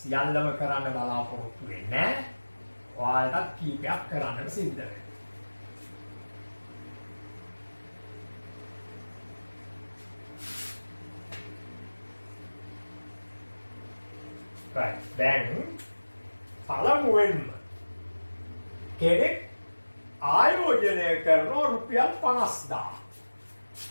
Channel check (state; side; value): inverted; both; correlation -1.00